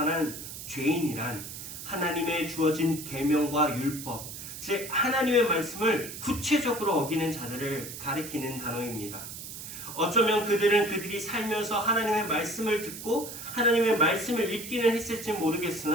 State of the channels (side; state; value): right; noise; hiss, 10 dB below the sound